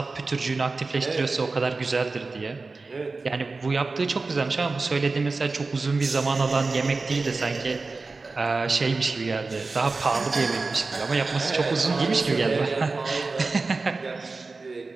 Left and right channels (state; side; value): quieter; left; 3.8 dB